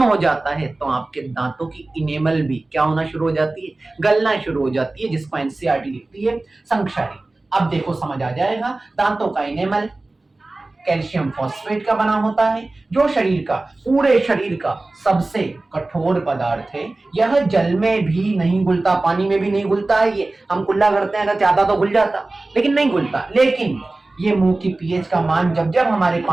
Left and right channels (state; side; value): quieter; left; 3.0 dB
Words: हो जाता है तो आपके दांतों की इनेमल भी क्या होना शुरू हो जाती है, गलना शुरू हो जाती है, जिसको एनसीईआरटी लिखती है संक्षारी। अब देखो समझ आ जाएगा, दांतों का इनेमल कैल्शियम फॉस्फेट का बना होता है, जो शरीर का, पूरे शरीर का सबसे कठोर पदार्थ है। यह जल में भी नहीं घुलता, पानी में भी नहीं घुलता है। ये हम कुल्ला करते हैं, अगर चाहता तो घुल जाता, लेकिन नहीं घुलता। लेकिन ये मुंह की पीएच का मान जब जब हमारे